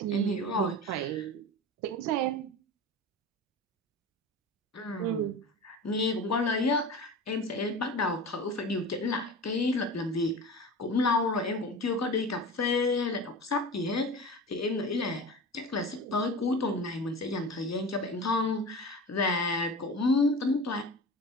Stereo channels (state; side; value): normal; both; correlation 0.32